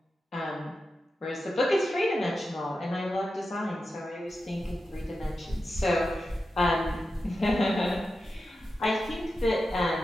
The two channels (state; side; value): normal; both; correlation 0.91